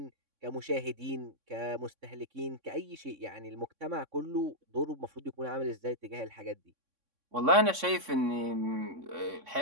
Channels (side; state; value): left; late; 3.6 ms